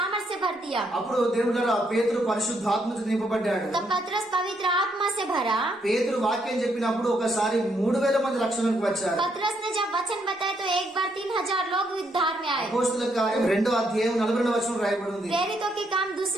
भर दिया। అప్పుడు దేవుడు పేతురు పరిశుద్ధాత్మతో నింపబడ్డాడు. तब पतरस पवित्र आत्मा से भरा। పేతురు వాక్యం చెప్పినప్పుడు ఒకసారి 3000 మంది రక్షణకు వచ్చారు. पतरस ने जब वचन बताए तो एक बार 3000 लोग उद्धार में आए। అపోస్తలుల కార్యం 2వ అధ్యాయం 42వ వచనం రాయబడి ఉంది. प्रेरितों के काम 2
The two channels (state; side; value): normal; both; correlation 0.74